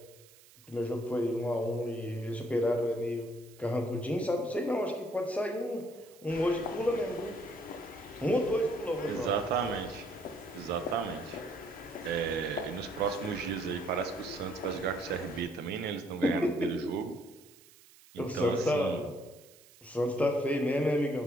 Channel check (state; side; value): noise; right; hiss, 24 dB below the sound